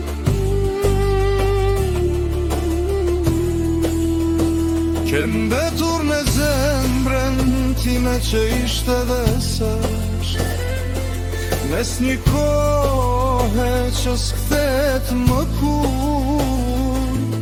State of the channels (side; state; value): both; identical; correlation 1.00